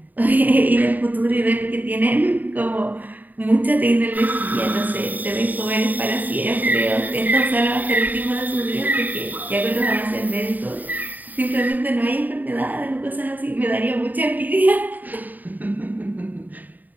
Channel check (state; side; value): late; left; 0.084 ms